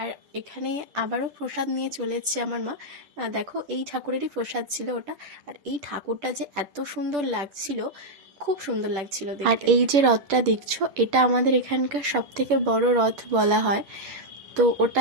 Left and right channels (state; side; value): late; left; 11 ms